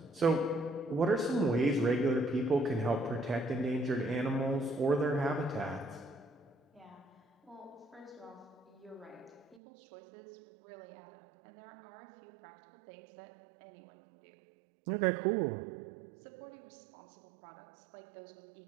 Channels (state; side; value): drops out; left; at 9.6 s